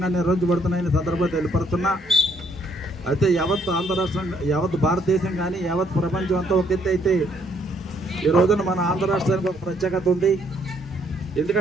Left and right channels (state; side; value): normal; both; correlation 0.68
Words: నిర్వహించబడుతున్నాయని సందర్భంగా తెలియపరుస్తున్నా. అయితే యావత్ ఆంధ్ర రాష్ట్రం, యావత్ భారతదేశం కానీ యావత్ ప్రపంచం అంతా ఒక ఎత్తు అయితే ఈ రోజున మన ఆంధ్ర రాష్ట్రానికి ఒక ప్రత్యేకత ఉంది.